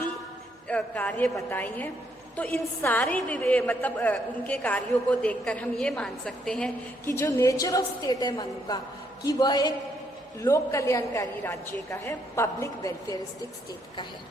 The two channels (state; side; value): normal; both; correlation 0.73